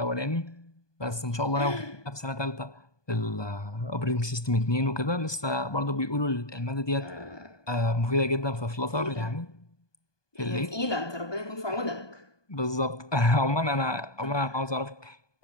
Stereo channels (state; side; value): late; right; 1.2 ms